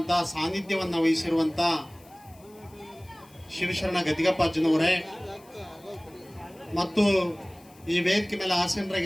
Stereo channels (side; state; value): left; noise; hiss, 27 dB below the sound